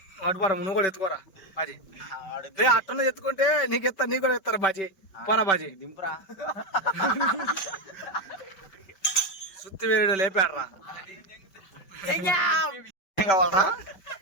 అటుపరా నువ్వు కూడా ఎత్తుకోరా బాజీ రే అట్టనే ఎత్తుకుంటే నీకు కూడా ఎత్తారా బాజీ పోరా బాజీ దింపురా సుత్తి వేరుడు లేపాడరా ఏం కావాలరా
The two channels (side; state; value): right; late; 5.2 ms